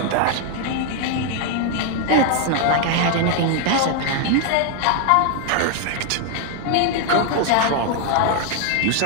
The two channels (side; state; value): both; different; correlation 0.01